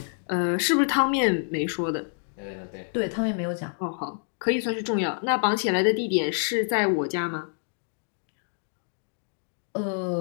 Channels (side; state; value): right; silent; 60 dB below the other